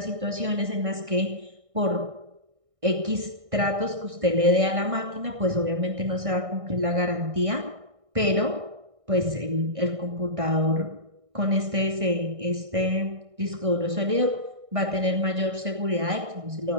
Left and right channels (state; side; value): late; left; 1.6 ms